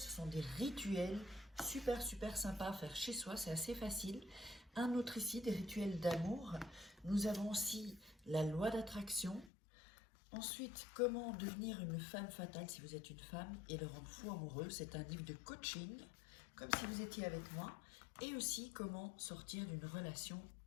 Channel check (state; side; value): drops out; right; at 9.5 s